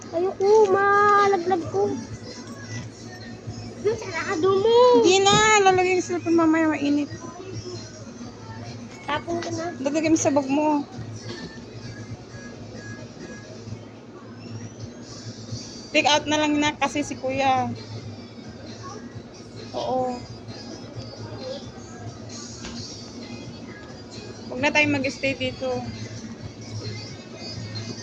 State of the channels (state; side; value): identical; both; correlation 1.00